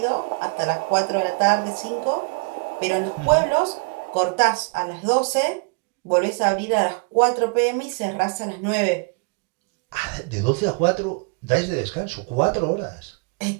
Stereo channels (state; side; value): quieter; left; 33.6 dB